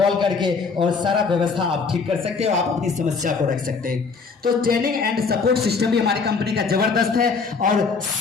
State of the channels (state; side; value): quieter; right; 4.9 dB